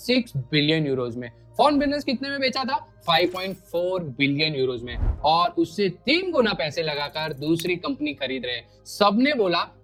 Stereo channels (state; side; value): identical; both; correlation 1.00